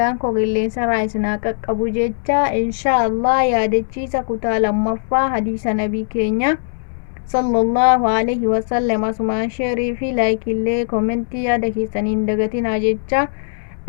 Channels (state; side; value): silent; right; 67 dB below the other